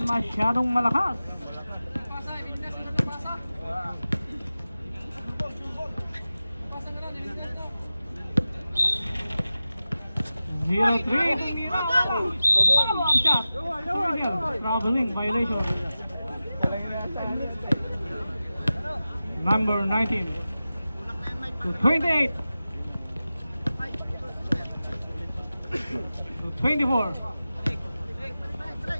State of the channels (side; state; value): both; inverted; correlation -0.94